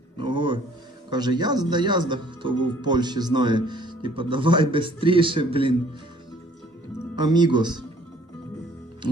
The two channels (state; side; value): normal; both; correlation 0.57